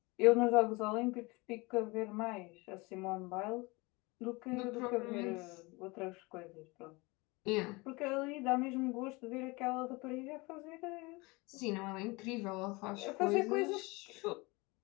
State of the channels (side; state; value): right; quieter; 25.0 dB